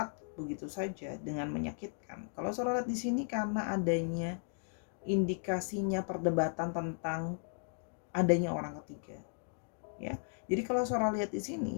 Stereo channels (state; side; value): silent; right; 54 dB below the other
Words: begitu saja dengan menyakitkan? Kalau Sora lihat di sini karena adanya indikasinya perdebatan tentang adanya orang ketiga. Ya. Jadi kalau Sora lihat di